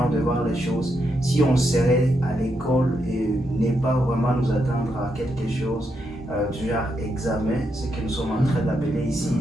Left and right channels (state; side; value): normal; both; correlation 0.81